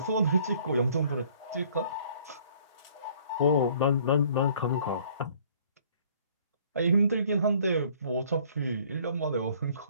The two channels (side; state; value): both; inverted; correlation -0.57